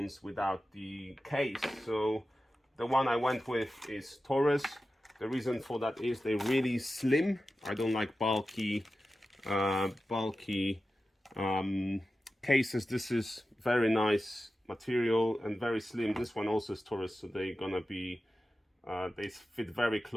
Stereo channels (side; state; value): both; normal; correlation 0.93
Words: without the case. So the one I went with is Taurus. The reason for that is they're really slim. I don't like bulky cases. This is very nice material and very slim. This one also is Taurus, so they're gonna be they fit very